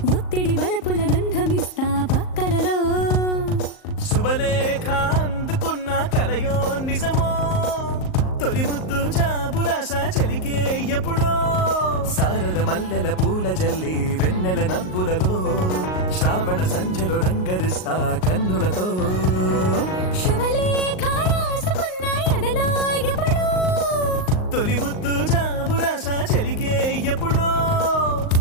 ఒత్తిడి వలపుల గంధమిస్తా పక్కలలో శుభలేఖ అందుకున్న కలయో నిజమో తొలి ముద్దు జాబురాశ చెలికే ఎప్పుడో శారద మల్లెల పూల జల్లి వెన్నెల నవ్వులలో శ్రావణ సంధ్యలో రంగరిస్తా కన్నులతో శుభలేఖ రాసుకున్న ఎదలో ఎప్పుడో తొలి ముద్దు జాబురాశ చెలికే ఎప్పుడో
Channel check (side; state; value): right; late; 38 ms